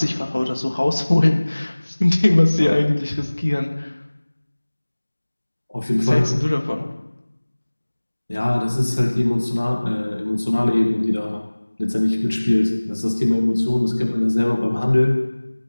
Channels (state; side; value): inverted; both; correlation -1.00